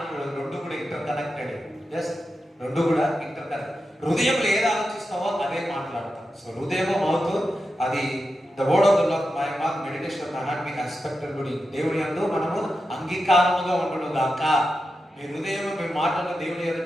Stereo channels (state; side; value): normal; both; correlation 0.89